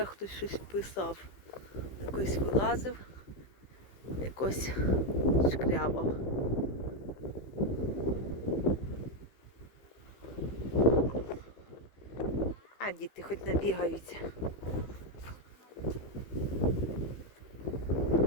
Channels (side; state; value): right; late; 15 ms